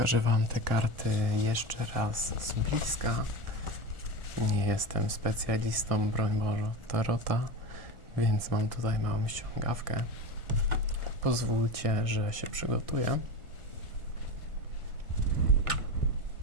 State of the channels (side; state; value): left; late; 1.4 ms